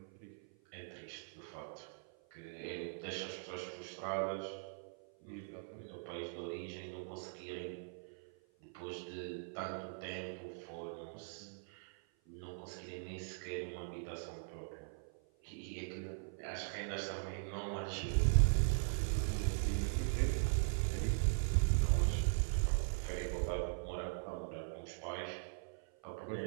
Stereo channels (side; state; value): left; silent; 51 dB below the other